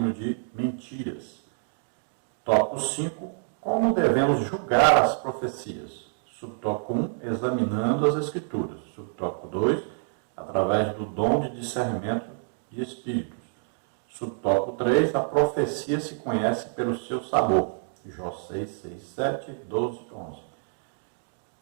de mentiras. Tópico 5, como devemos julgar as profecias? Subtópico 1, examinando as Escrituras. Subtópico 2, através do dom de discernimento de espíritos. Subtópico 3, a profecia se conhece pelo seu sabor. Jó 6, 6, 7, 12, 11.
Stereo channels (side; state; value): left; silent; 60 dB below the other